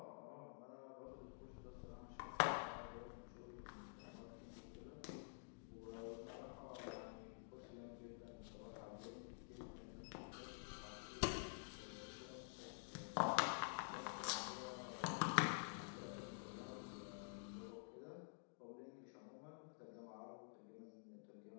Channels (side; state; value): right; silent; digital silence